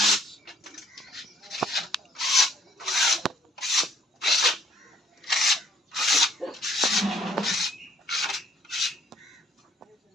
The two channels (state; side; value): normal; both; correlation 0.63